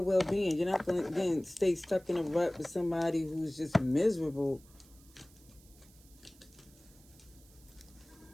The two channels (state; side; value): noise; right; hiss, 26 dB below the sound